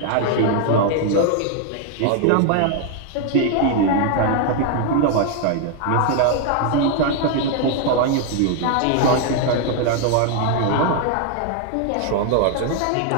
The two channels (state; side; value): different; both; correlation 0.00